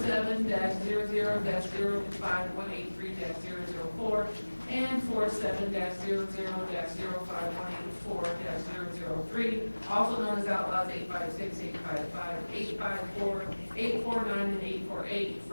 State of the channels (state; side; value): inverted; both; correlation -1.00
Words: and 47-00-05184-003, also known as Outlaws 856, 855, 854, 849, and 848,